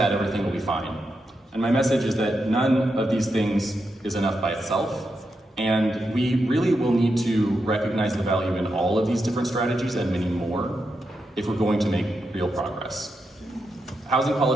everything will be fine. And my message is that none of these things is enough by itself, and we really will need to recognize the value in all of these different strategies and many more if we're going to make real progress. Housing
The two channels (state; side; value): normal; both; correlation 0.85